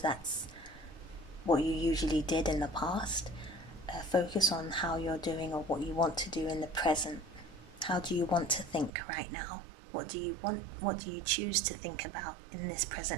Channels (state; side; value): drops out; left; at 8.9 s